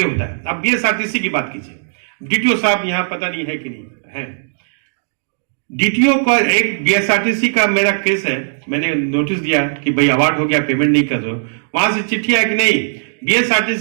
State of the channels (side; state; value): left; silent; digital silence